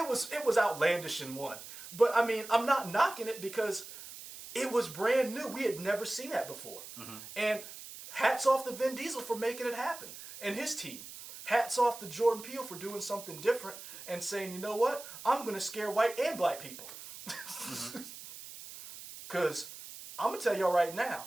was outlandish in 1. But I mean, I'm not knocking it because it was brand new. We had never seen that before. And hats off to Vin Diesel for making it happen and his team. Hats off to Jordan Peele for doing something different and saying, you know what? I'm going to scare white and black people. Because I'm going to tell y'all right now,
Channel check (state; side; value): noise; right; hiss, 13 dB below the sound